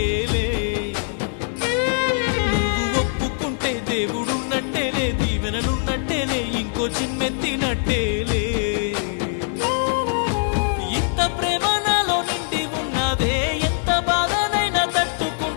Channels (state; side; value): silent; right; 64 dB below the other